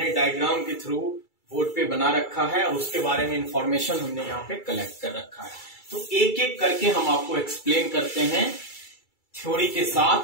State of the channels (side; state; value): right; late; 2.3 ms